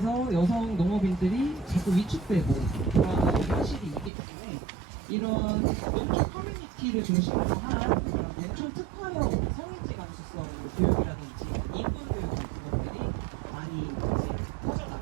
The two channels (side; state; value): left; drops out; at 4.1 s